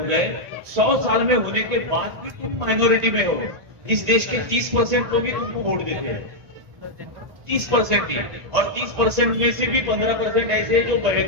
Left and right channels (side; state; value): left; late; 1.7 ms